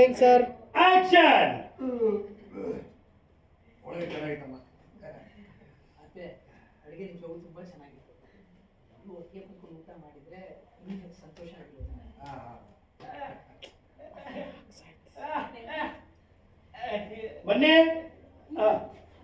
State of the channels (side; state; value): both; identical; correlation 1.00